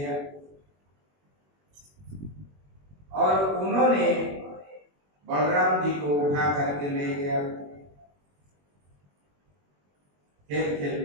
और उन्होंने बलराम जी को उठा करके ले गया खेल खेल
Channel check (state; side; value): late; left; 21 ms